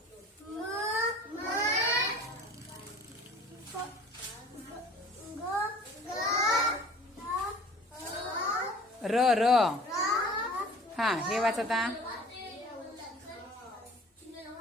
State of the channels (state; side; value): normal; both; correlation 0.47